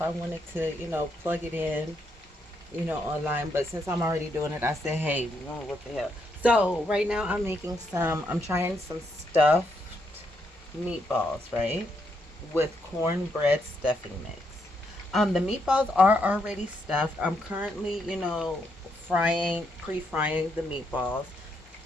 I wanted to, plug it in, online, but since I'm already doing it, I said, hey, what the hell. So right now I'm trying some stuffed meatballs, right? With cornbread stuffing mix. The meatballs are already stuffed. I'm currently, pre-frying the meatballs.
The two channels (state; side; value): normal; both; correlation 0.78